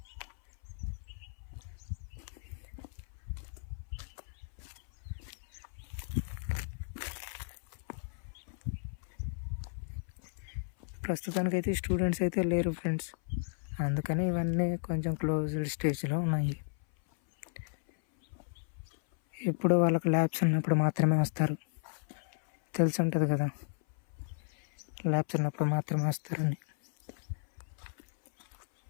ప్రస్తుతానికైతే స్టూడెంట్స్ అయితే లేరు ఫ్రెండ్స్, అందుకని ఇవన్నీ కొంచెం క్లోజ్డ్ స్టేజ్లో ఉన్నాయి. ఎప్పుడు వాళ్ళకి ల్యాబ్స్ ఉన్నప్పుడు మాత్రమే వస్తారు, తెలిసి ఉంటుంది కదా, ల్యాబ్స్ ఉన్నప్పుడు మాత్రమే వస్తారని.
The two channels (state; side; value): silent; right; 55 dB below the other